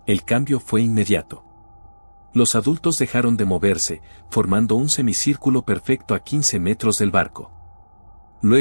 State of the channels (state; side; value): inverted; both; correlation -1.00